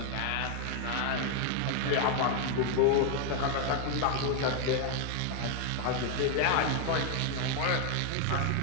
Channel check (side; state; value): both; different; correlation 0.01